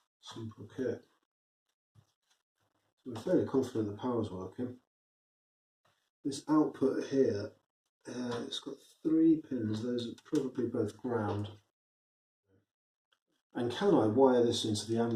Simple kit. So we're fairly confident the power's working. This output here, it's got 3 pins. Those are probably both ground. And can I wire this into the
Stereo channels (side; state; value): both; identical; correlation 1.00